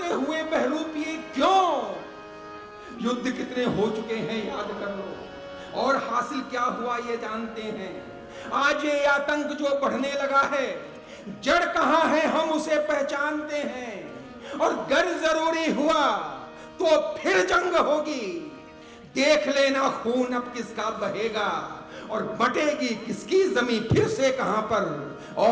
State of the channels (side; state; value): both; identical; correlation 1.00